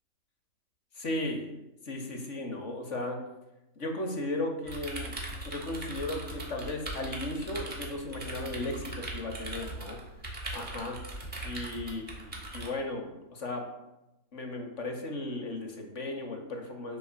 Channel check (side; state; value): right; late; 3.5 ms